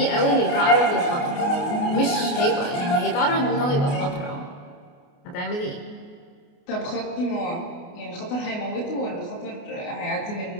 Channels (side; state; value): right; late; 28 ms